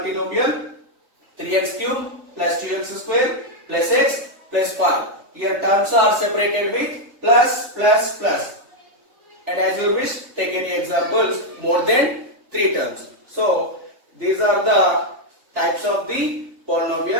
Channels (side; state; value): left; late; 3.4 ms